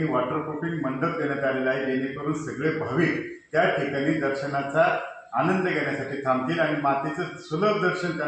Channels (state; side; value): identical; both; correlation 1.00